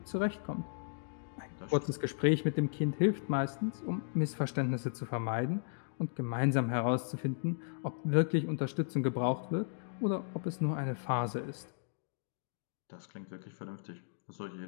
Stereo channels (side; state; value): right; silent; digital silence